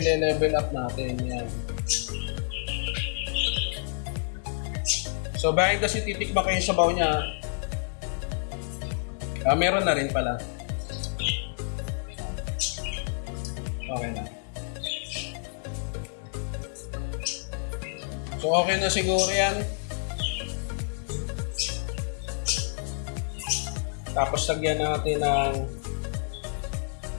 up natin yan. So behind the scene, titikman ko yung sabaw niya. Meron na rin pala. Okay na. So okay na siguro yan. Tapos lagyan natin ng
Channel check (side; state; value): right; silent; digital silence